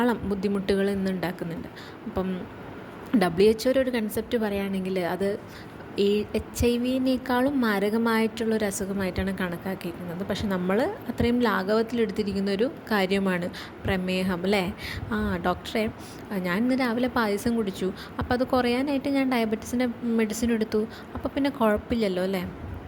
ബുദ്ധിമുട്ടുകൾ ഇന്ന് ഉണ്ടാക്കുന്നുണ്ട്. അപ്പം WHO ഒരു കൺസെപ്റ്റ് പറയുകയാണെങ്കിൽ അത് HIV-നേക്കാളും മാരകമായിട്ടുള്ളൊരു അസുഖമായിട്ടാണ് കണക്കാക്കിയിരിക്കുന്നത്. പക്ഷെ നമ്മൾ അത്രയും ലാഘവത്തിലെടുത്തിരിക്കുന്നൊരു കാര്യമാണ് പ്രമേഹം അല്ലേ? ഡോക്ടറെ, ഞാൻ ഇന്ന് രാവിലെ പായസം കുടിച്ചു, അപ്പോൾ അത് കുറയാനായിട്ട് ഞാൻ ഡയബറ്റീസിൻ്റെ മെഡിസിൻ എടുത്തു, അപ്പോൾ പിന്നെ കുഴപ്പമില്ലല്ലോ അല്ലേ?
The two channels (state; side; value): identical; both; correlation 1.00